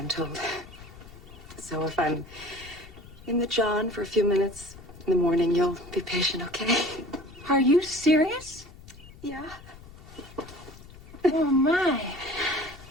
told. So if I'm in the John for a few minutes in the morning, you'll be patient, okay? Are you serious? Yeah. Oh, my.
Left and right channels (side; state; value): left; noise; rumble, 18 dB below the sound